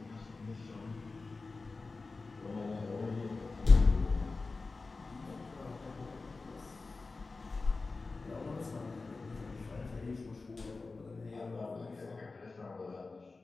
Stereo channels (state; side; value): quieter; right; 3.8 dB